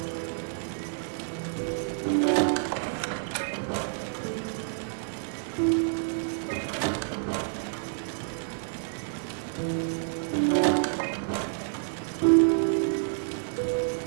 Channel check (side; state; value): left; silent; digital silence